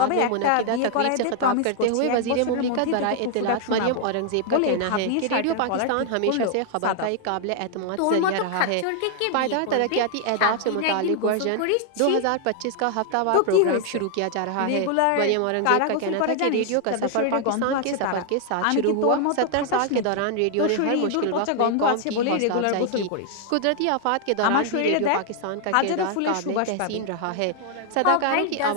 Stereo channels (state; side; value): different; both; correlation 0.00